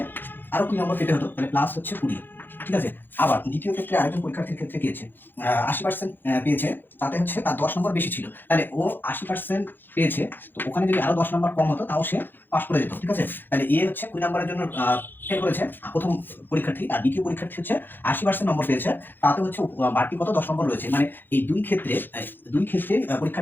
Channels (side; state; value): right; late; 0.095 ms